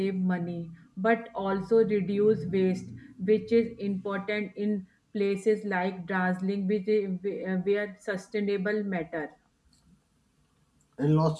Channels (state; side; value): identical; both; correlation 1.00